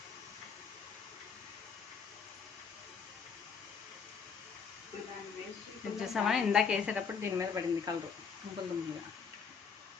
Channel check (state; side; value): quieter; right; 6.1 dB